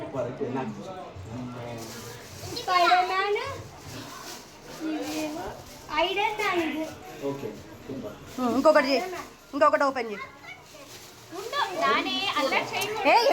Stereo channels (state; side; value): identical; both; correlation 1.00